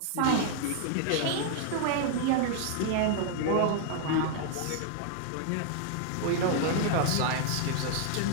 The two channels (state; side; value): different; both; correlation 0.00